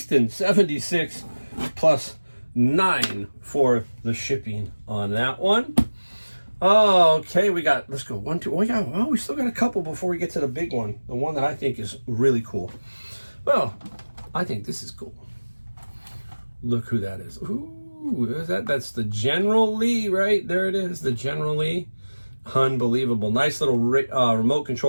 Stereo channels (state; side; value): inverted; both; correlation -1.00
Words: 76 plus 9 for the shipping on that one. Okay, let's go 1, 2. We still got a couple before we get to the big one. The one that I think is really cool. Well, I think this is cool. Look who that is. Ooh, that's the General Lee, right? There it is, the General Lee. Unbelievable. Nice little remote